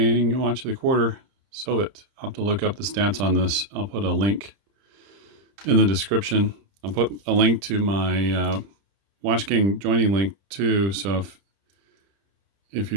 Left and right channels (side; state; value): left; late; 30 ms